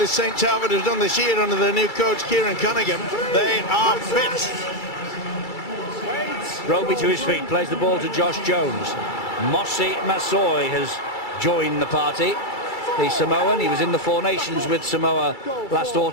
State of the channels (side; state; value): right; late; 2.3 ms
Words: St Talbot has done this year under their new coach, Kieran Cunningham, they are fit. Roby to his feet, plays the ball to Josh Jones. Mossy Masoi has joined the party. The Samoan, he was in the Four Nations with Samoa last